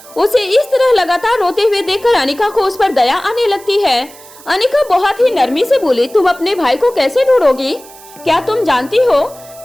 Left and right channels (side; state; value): right; noise; hiss, 21 dB below the sound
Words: उसे इस तरह लगातार रोते हुए देखकर अनिका को उस पर दया आने लगती है। अनिका बहुत ही नरमी से बोली, तुम अपने भाई को कैसे ढूंढोगी? क्या तुम जानती हो